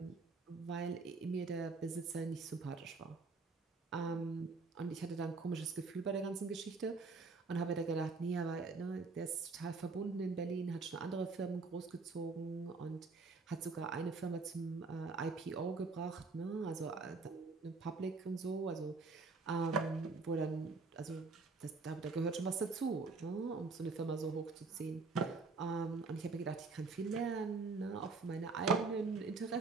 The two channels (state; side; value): quieter; left; 4.1 dB